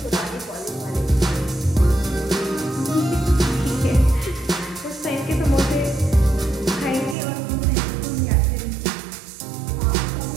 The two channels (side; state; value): left; drops out; at 7.2 s